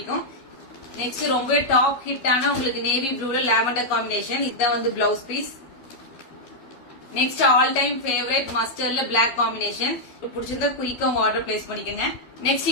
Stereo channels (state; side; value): late; right; 12 ms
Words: நெக்ஸ்ட் ரொம்ப டாப் ஹிட்டான உங்களுக்கு நேவி ப்ளூல லாவெண்டர் காம்பினேஷன். இதுதான் வந்து blouse piece. Next all time favourite மஸ்டர்ட்ல பிளாக் காம்பினேஷன். பிடிச்சிருந்தா குயிக்கா உங்க ஆர்டர் பிளேஸ் பண்ணிக்கங்க. நெக்ஸ்ட்